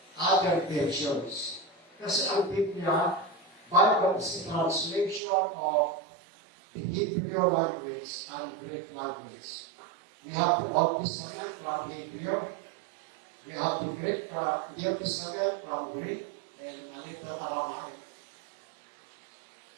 other versions. Kasi ang Biblia, Bible is a translation of the Hebrew language and Greek language. We have the Old Testament from Hebrew. We have the Greek from New Testament from Greek and a little Aramaic.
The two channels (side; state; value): left; drops out; at 5.2 s